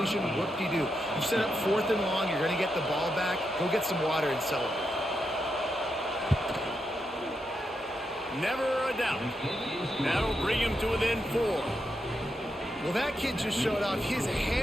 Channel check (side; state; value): both; normal; correlation 0.84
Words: Whoop-de-doo. You set up 4th and long. You're going to get the ball back. Go get some water and celebrate. Never a doubt. That'll bring him to within 4. Well, that kid just showed off his